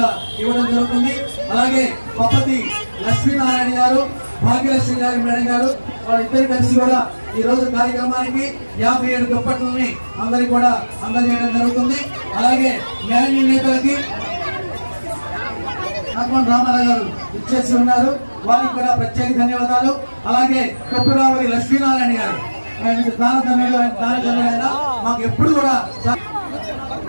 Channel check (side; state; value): both; inverted; correlation -1.00